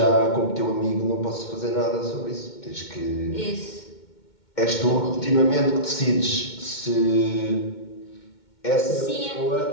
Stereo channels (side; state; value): right; late; 2.2 ms